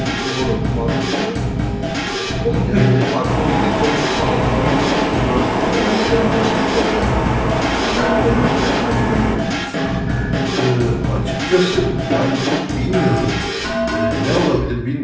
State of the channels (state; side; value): identical; both; correlation 1.00